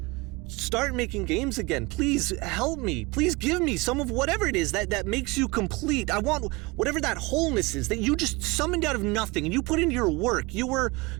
start making games again. Please help me. Please give me some of whatever it is that makes you complete. I want whatever that wholeness is that you just summoned out of nothing and you put into your work. You were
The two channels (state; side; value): quieter; left; 24.6 dB